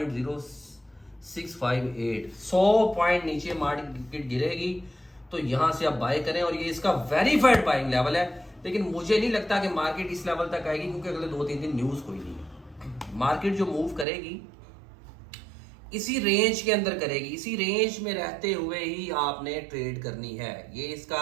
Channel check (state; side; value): drops out; left; at 14.1 s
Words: 100 पॉइंट नीचे मार्केट गिरेगी तो यहां से आप बाय करें, और ये इसका वेरीफाइड बाइंग लेवल है। लेकिन मुझे नहीं लगता कि मार्केट इस लेवल तक आएगी, क्योंकि अगले 2-3 दिन न्यूज कोई नहीं है। मार्केट जो मूव करेगी इसी रेंज के अंदर करेगी, इसी रेंज में रहते हुए ही आपने ट्रेड करनी है। ये